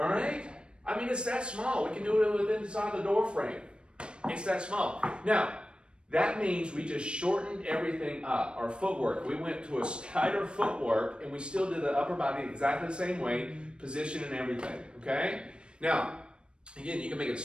right? I mean, it's that small. We can do it within inside the door frame. It's that small. Now, that means we just shortened everything up. Our footwork. We went to a tighter footwork, and we still did the upper body exactly the same way, position and everything. Okay? Now, again, you can make it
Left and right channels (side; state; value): left; late; 0.055 ms